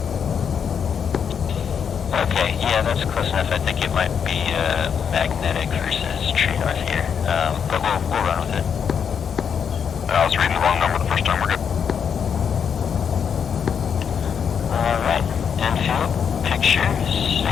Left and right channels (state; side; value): quieter; right; 7.3 dB